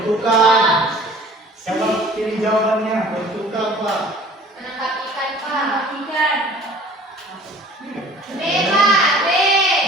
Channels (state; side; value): normal; both; correlation 0.48